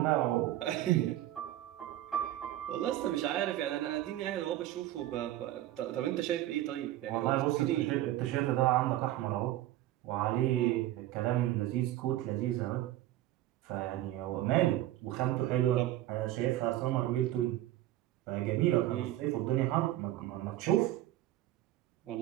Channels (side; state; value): left; quieter; 14.5 dB